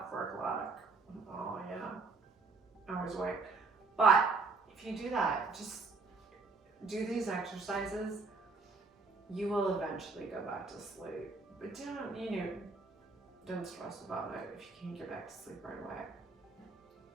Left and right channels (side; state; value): left; quieter; 4.0 dB